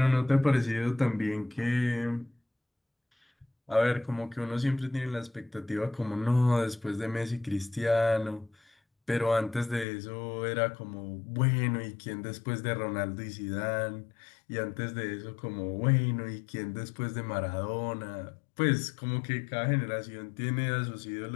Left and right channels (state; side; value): drops out; right; at 9.9 s